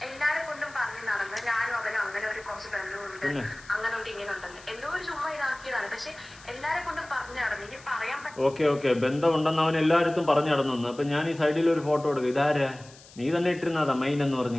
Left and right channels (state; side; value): noise; left; hiss, 22 dB below the sound